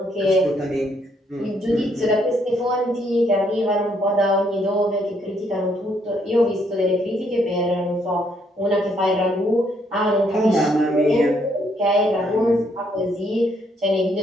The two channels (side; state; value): both; normal; correlation 0.71